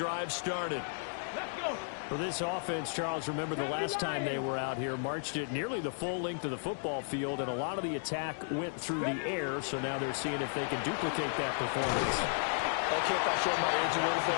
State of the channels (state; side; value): silent; right; digital silence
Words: started. Let's go. For this offense, Charles, remember the last time they were out here, marched it nearly the full length of the football field, and a lot of the attack went through the air, so now they're seeing if they can duplicate that performance. Okay, if I show my age a little